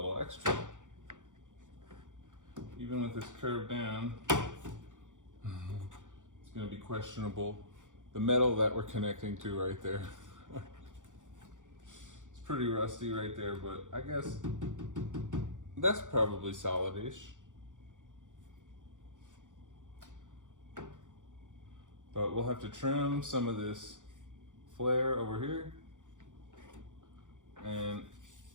extra. Even with this curved down, it's gonna be questionable. The metal that we're connecting to right there. It's pretty rusty right there, but I guess that's probably solid-ish. But we'll have to trim some of this flare over here, and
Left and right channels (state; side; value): late; left; 0.87 ms